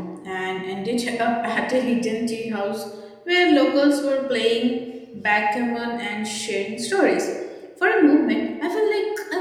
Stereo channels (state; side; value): identical; both; correlation 1.00